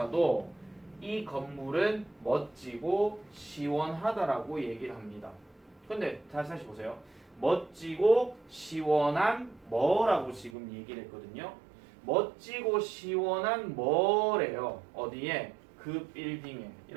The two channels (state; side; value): drops out; left; at 10.5 s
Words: 이 건물은 멋지고 시원하다라고 얘기를 합니다. 근데 다시 보세요. 멋지고 시원한 뭐라고 지금 얘기를 했거든요. 멋지고 시원한 뭐래요. 어디에? 그 빌딩에.